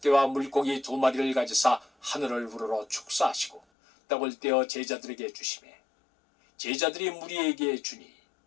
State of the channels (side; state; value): right; drops out; at 3.6 s